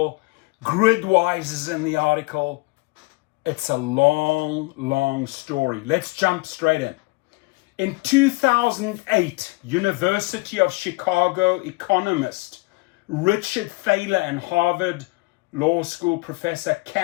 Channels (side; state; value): right; quieter; 25.3 dB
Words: Gridwise is in the article. It's a long, long story. Let's jump straight in. In 2008, University of Chicago economist Richard Thaler and Harvard Law School professor